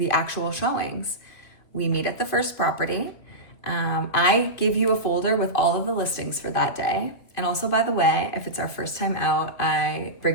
actual showings. We meet at the first property. I give you a folder with all of the listings for that day. And also, by the way, if it's our first time out, I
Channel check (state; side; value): late; right; 2.8 ms